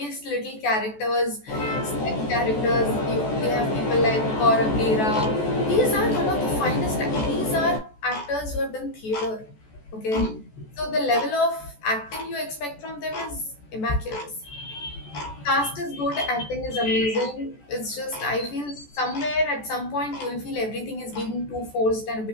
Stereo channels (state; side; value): late; right; 14 ms